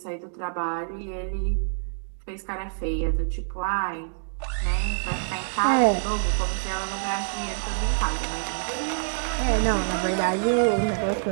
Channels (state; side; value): silent; left; digital silence